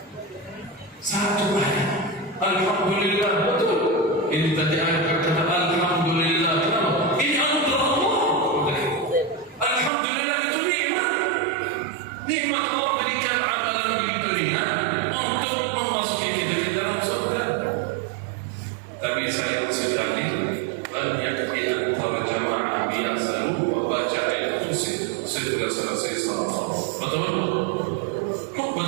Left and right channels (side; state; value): left; drops out; at 9.9 s